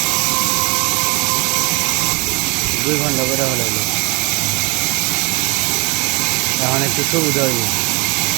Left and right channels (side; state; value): left; quieter; 28.8 dB